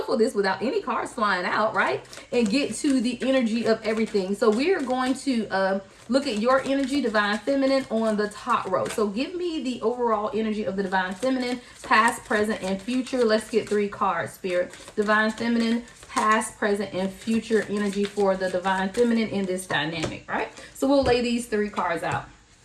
this without any cards flying out, right? And get to the energy of everything. So we are going to look at your energy, divine feminine, on the top row. So give me the overall energy of the divine feminine, past, present, and future. Let's get 3 cards, spirit. Divine feminine, past, present, and future energy for the divine feminine in this dynamic, right? So we'll lay these 3 cards out.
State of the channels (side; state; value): both; identical; correlation 1.00